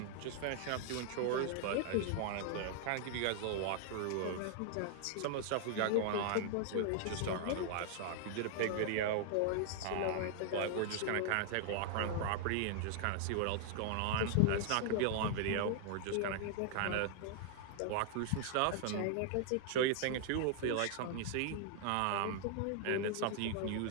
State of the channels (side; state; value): both; different; correlation 0.00